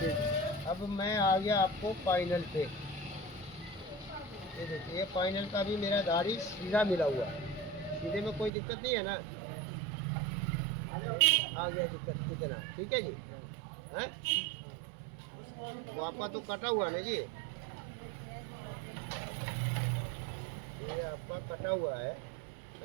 अब मैं आ गया आपको फाइनल पे। ये देखिए ये फाइनल का भी मेरा दाढ़ी सीधा मिला हुआ है, सीधे में कोई दिक्कत नहीं है ना। आ गया दिक्कत कितना, ठीक है जी। हैं तो आपका तो कटा हुआ ना जी, ये आपका कटा हुआ है,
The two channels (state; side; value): drops out; left; at 8.5 s